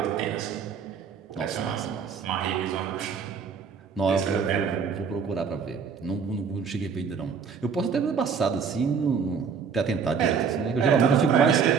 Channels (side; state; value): left; quieter; 6.2 dB